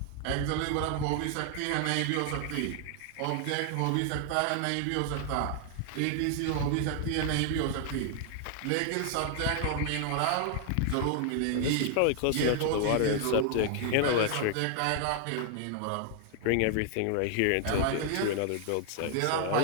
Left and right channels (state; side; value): different; both; correlation 0.00